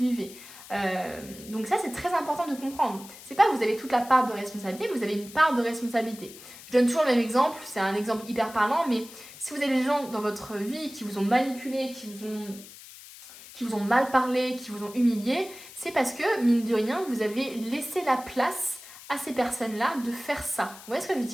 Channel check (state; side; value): noise; left; hiss, 17 dB below the sound